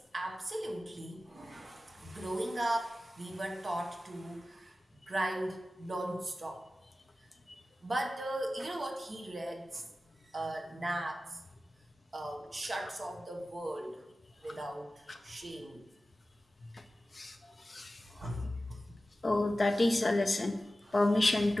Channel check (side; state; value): both; normal; correlation 0.95